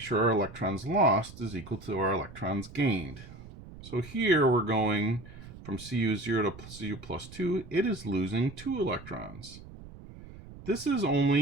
our electrons lost is equal to our electrons gained. So here we're going from Cu0 to Cu +2, it is losing 2 electrons. This is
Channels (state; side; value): noise; right; rumble, 16 dB below the sound